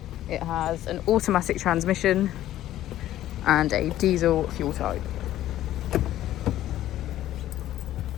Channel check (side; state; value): right; quieter; 13.4 dB